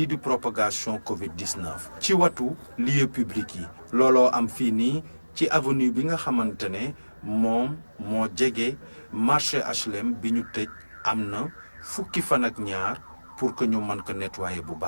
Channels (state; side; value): inverted; both; correlation -1.00